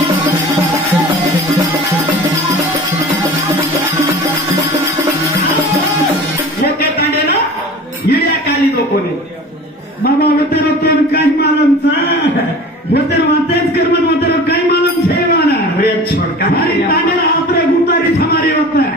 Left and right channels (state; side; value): normal; both; correlation 0.39